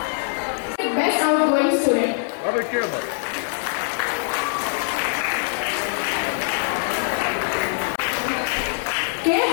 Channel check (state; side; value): silent; right; digital silence